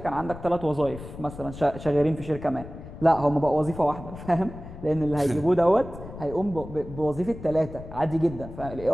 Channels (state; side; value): noise; left; rumble, 13 dB below the sound